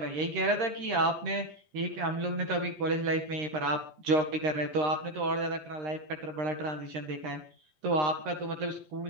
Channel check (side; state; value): left; late; 13 ms